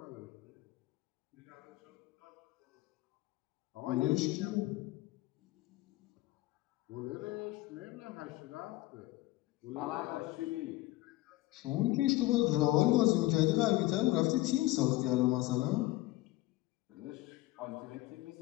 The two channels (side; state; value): right; quieter; 18.1 dB